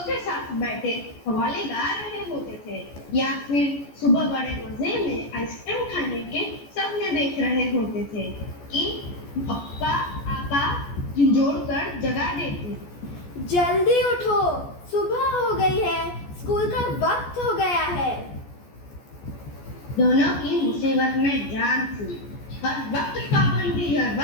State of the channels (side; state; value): right; late; 14 ms